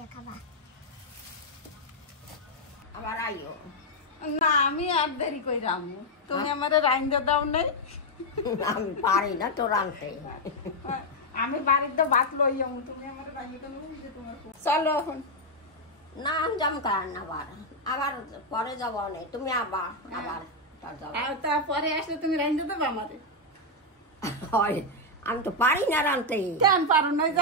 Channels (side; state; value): both; normal; correlation 0.01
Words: খাবা। আবার আইও। না আমি আর দেরি কই রামু তুমি আমারে রাইন্দা দাও নাই আমি পারি না তো রাঁধতে। আমি বাড়িতে ভাত লই যাবো তুমি আমারে রাইন্দা দাও যে তোমার চলো এখন না আমি যাম কার না আবার পরে যাব না তুমি আবার তারপরে আসলে তুমি রাইন্দা দেবো আমারে হয় আমি তো পারি না রাঁধতে। কেন পারো না